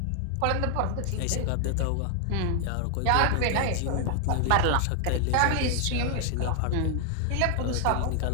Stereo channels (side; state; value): both; different; correlation 0.00